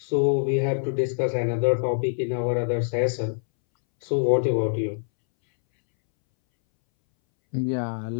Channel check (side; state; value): right; silent; 62 dB below the other